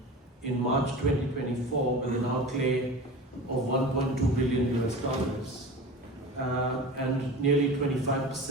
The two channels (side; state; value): both; normal; correlation 0.34